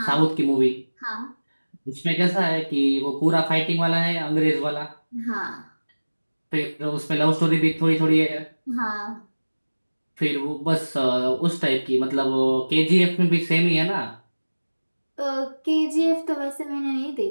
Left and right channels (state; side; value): inverted; both; correlation -1.00